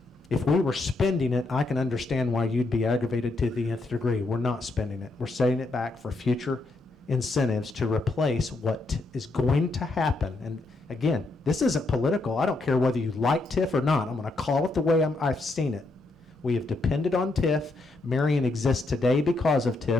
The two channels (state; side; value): quieter; right; 3.1 dB